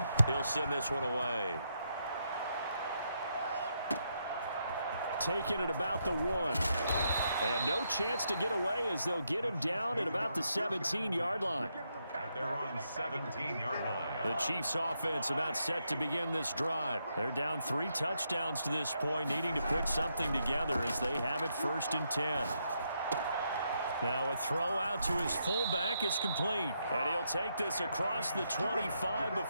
He'll send this one away. Taking it about the 1. And no chance to get away as they'll get him down at about the 17-yard line. At their own 17-yard line. The Chiefs offense about set to begin this drive. They're down 3 touchdowns to this point, needing to put something together as they have it 1st and 10. Now a throw out to his fullback is complete. And he'll take this across the 25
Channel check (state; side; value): inverted; both; correlation -0.80